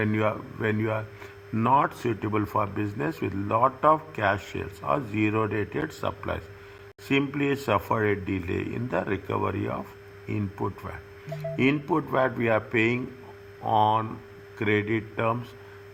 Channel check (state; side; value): identical; both; correlation 1.00